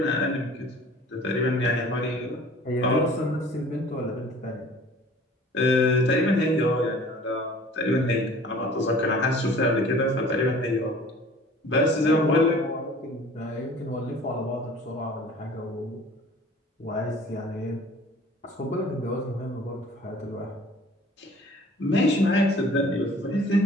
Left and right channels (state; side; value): normal; both; correlation 0.48